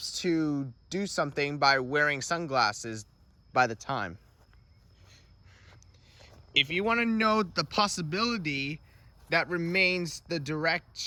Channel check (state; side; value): identical; both; correlation 1.00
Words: to do something by wearing sunglasses by the time? If you want to know the possibility that remains the